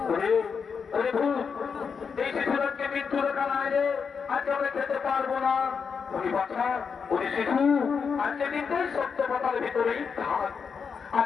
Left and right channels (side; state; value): right; quieter; 6.0 dB